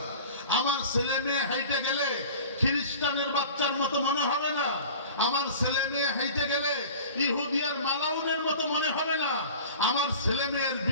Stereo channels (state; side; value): inverted; both; correlation -0.41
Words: আমার ছেলে মেয়ে হাইটে গেলে খ্রিস্টানের বাচ্চার মতো মনে হবে না। আমার ছেলে মেয়ে হাইটে গেলে ইহুদিয়ার মালাউনের মতো মনে হবে না। আমার ছেলে মেয়ের